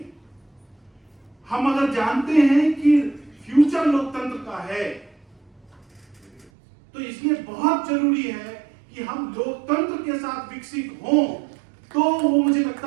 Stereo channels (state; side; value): drops out; left; at 6.5 s